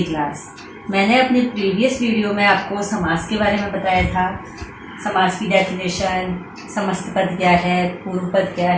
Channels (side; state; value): both; identical; correlation 1.00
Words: class. मैंने अपनी प्रीवियस वीडियो में आपको समास के बारे में बताया था। समास की डेफिनेशन, समस्त पद क्या है, पूर्व पद क्या